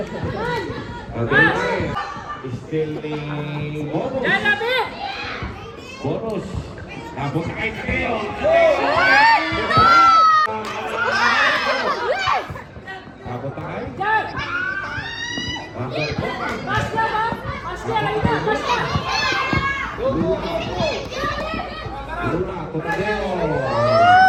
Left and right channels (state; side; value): identical; both; correlation 1.00